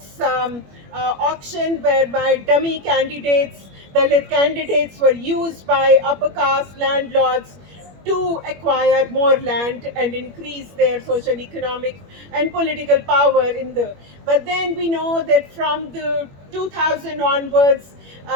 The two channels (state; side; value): late; left; 21 ms